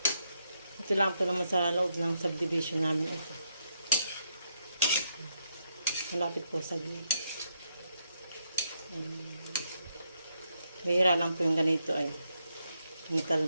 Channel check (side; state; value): both; inverted; correlation -0.79